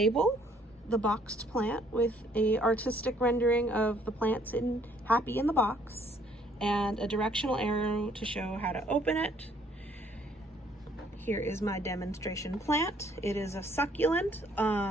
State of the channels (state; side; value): normal; both; correlation 0.63